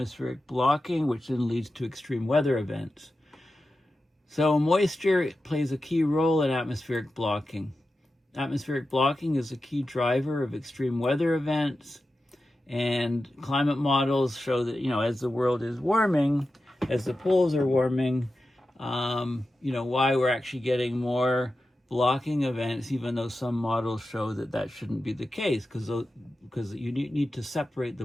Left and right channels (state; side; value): normal; both; correlation 0.92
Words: blocking, which then leads to extreme weather events. So moisture plays a key role in atmospheric blocking. Atmospheric blocking is a key driver of extreme weather events, and climate models show that, as the world is warming, as the poles are warming, why we're actually getting more blocking events, even though some models show that that shouldn't be the case, because you need to separate the